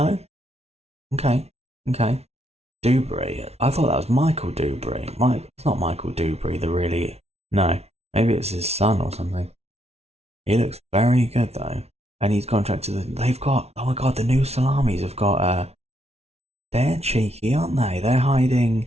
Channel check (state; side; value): late; left; 0.31 ms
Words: Okay. Dubry. I thought that was Michael Dubry. It's not Michael Dubry, No. Maybe it's his son or something. He looks very good though. And he's contracted they've got, oh my god, the new Salamis have got they're cheeky, aren't they? They're